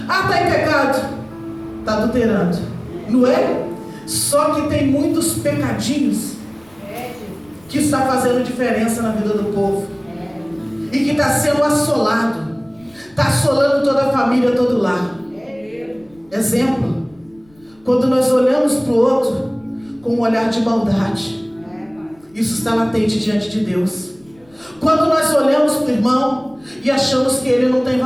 Está em pecado, está adulterando. Não é? Só que tem muitos pecadinhos que está fazendo diferença na vida do povo, e que está sendo assolado, está assolando toda a família, todo o lar. Exemplo, quando nós olhamos para o outro com um olhar de maldade, isso está latente diante de Deus. Quando nós olhamos para o irmão e achamos que ele não tem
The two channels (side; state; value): left; noise; rumble, 30 dB below the sound